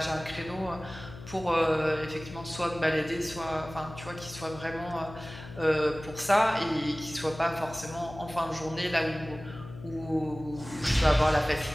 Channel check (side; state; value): left; noise; hum, 14 dB below the sound